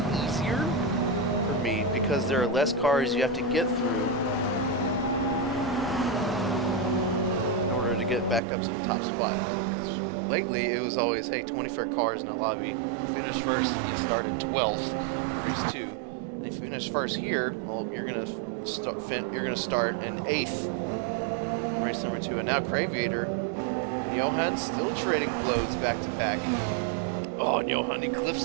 easier for Mead, because there are less cars you have to get through in order to get back up to the top spot. Because lately, it was always, hey, 24 cars in a lobby. You finish first, you started 12th, race 2. And if you finish first here, well, you're gonna start in 8th, race number 2. And now Graviator and Johan still trading blows back to back. Oh, and Johan, he clips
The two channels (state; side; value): drops out; left; at 8.4 s